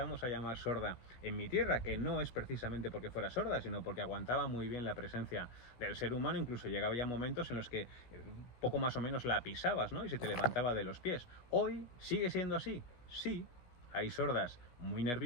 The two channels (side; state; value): right; late; 16 ms